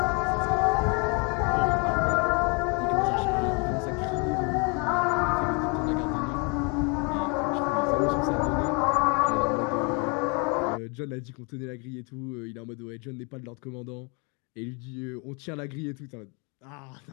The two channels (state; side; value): quieter; right; 33.5 dB